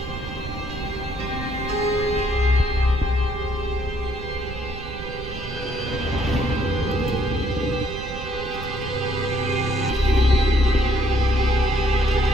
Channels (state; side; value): noise; right; rumble, 10 dB below the sound